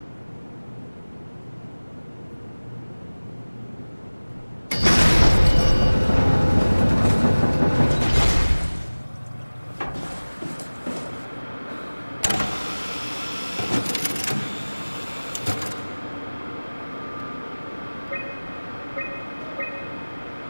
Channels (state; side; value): inverted; both; correlation -1.00